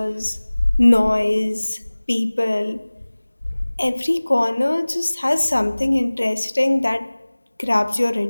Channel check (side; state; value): both; inverted; correlation -1.00